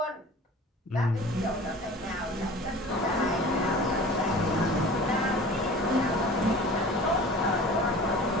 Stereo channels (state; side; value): normal; both; correlation 0.41